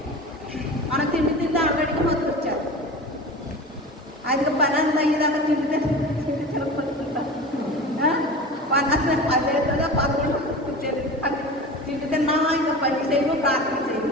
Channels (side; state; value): both; normal; correlation 0.33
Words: మన తిండి ఆల్రెడీకి మత్తు వచ్చారు. అది పని అంతా అయ్యేదాకా తిండి తినపడుతుంటా పని అంతా అదేగా పదకొండు వచ్చేది తిండి తిన్నా ఇంకా పని చేయము ప్రార్థన